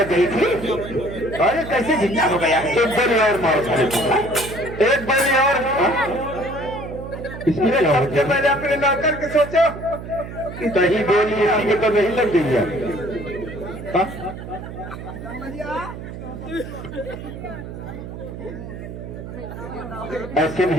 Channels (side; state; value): right; noise; hum, 10 dB below the sound